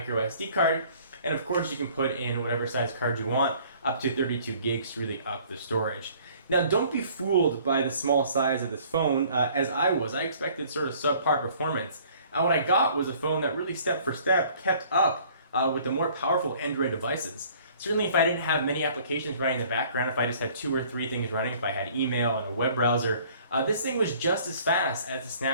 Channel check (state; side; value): inverted; both; correlation -0.55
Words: SD card. And of course, you can put in whatever size card you want, up to 32 gigs to really up the storage. Now, don't be fooled by the small size of this phone, as I was. I expected sort of subpar performance. And what I got was a phone that really step for step kept up with the more powerful Android devices. Certainly if I didn't have many applications running in the background, if I just had 2 or 3 things running, if I had email and a web browser, this thing was just as fast as the